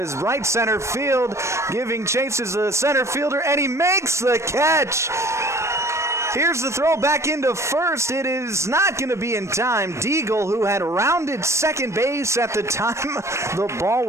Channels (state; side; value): late; left; 0.14 ms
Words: right center field, giving chances to the center fielder, and he makes the catch. Here's the throw back into first. It is not going to be in time. Deagle, who had rounded second base at the time the ball